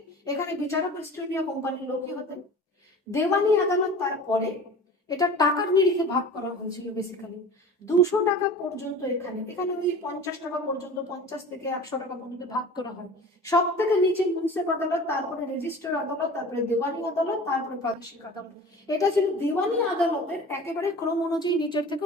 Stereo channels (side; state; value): both; normal; correlation 0.39